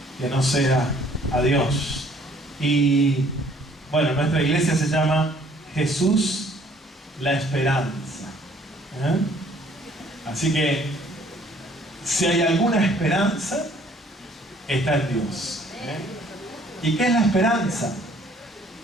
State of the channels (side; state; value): both; normal; correlation 0.59